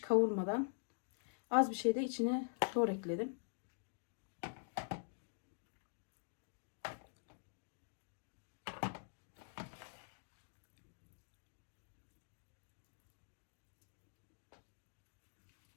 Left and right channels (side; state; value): right; silent; digital silence